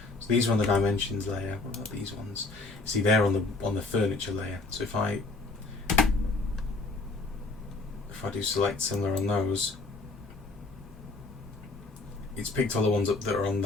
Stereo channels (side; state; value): right; quieter; 3.4 dB